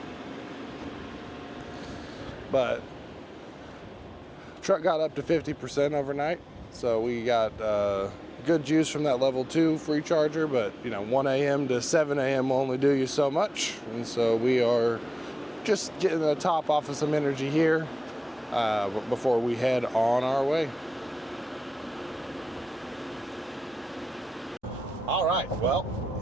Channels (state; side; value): normal; both; correlation 0.95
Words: But truck got up to 50% overnight, so we got good juice from that level 2 free charger. But you know, 1 a.m. to 7 a.m. will only do you so much, and so we are just getting the top off of some energy here before we head on our way. All right, well,